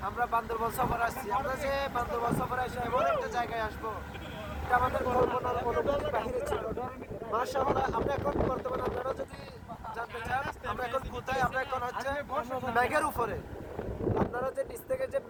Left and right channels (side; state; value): both; identical; correlation 1.00